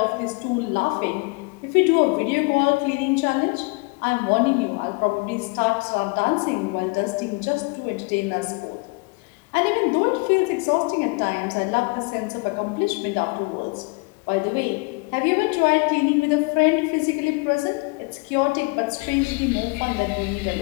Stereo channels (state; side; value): quieter; right; 29.2 dB